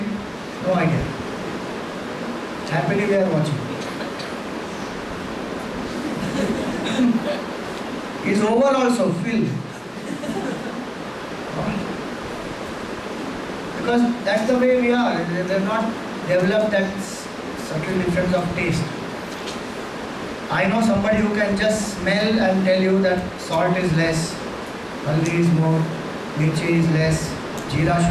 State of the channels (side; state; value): both; identical; correlation 1.00